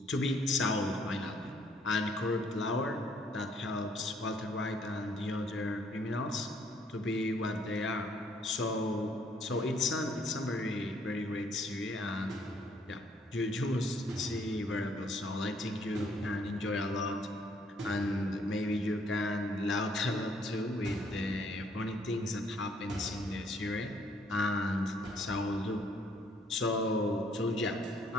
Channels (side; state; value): both; normal; correlation 0.66